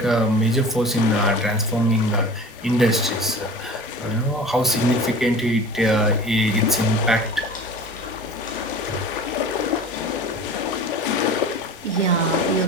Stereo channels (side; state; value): both; normal; correlation 0.38